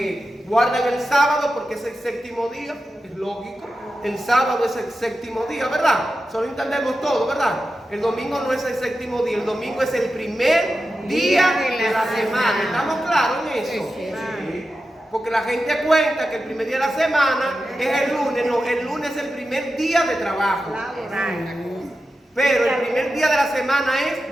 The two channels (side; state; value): both; normal; correlation 0.91